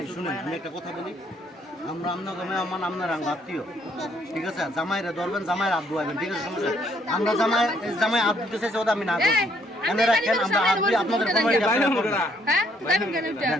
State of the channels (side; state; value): both; normal; correlation 0.68